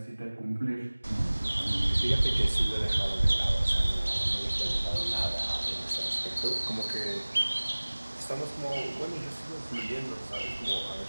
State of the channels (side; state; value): both; inverted; correlation -1.00